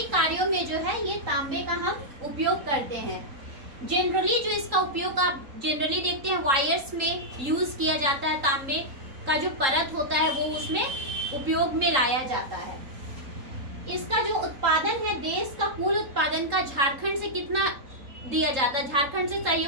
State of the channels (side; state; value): left; late; 3.8 ms